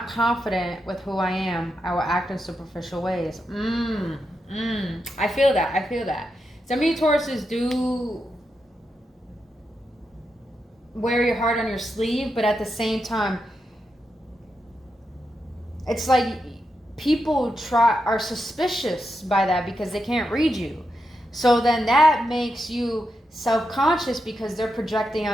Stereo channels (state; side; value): normal; both; correlation 0.86